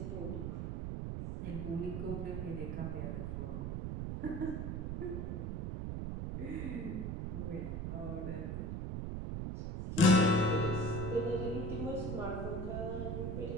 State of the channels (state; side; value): noise; right; rumble, 3 dB below the sound